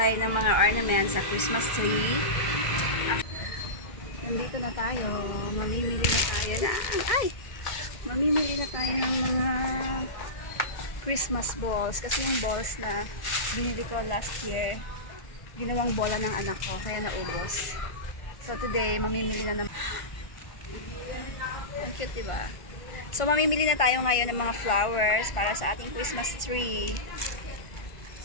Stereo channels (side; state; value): right; late; 1.5 ms